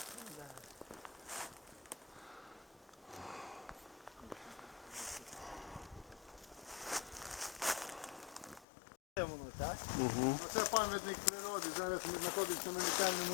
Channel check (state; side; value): drops out; right; at 8.7 s